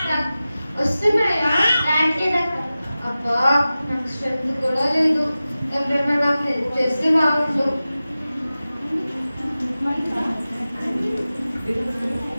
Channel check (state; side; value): inverted; both; correlation -0.95